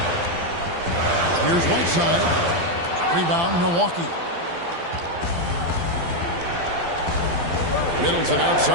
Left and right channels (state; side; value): late; left; 12 ms